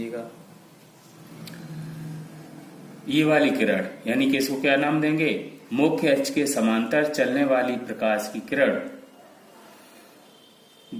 ये वाली किरण यानी कि इसको क्या नाम देंगे, मुख्य अक्ष के समांतर चलने वाली प्रकाश की किरण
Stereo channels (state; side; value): identical; both; correlation 1.00